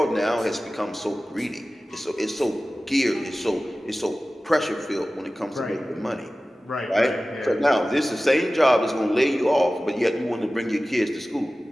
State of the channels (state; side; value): normal; both; correlation 0.96